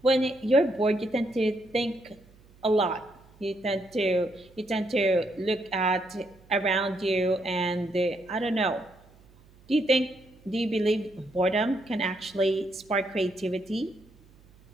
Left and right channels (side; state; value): right; noise; hum, 27 dB below the sound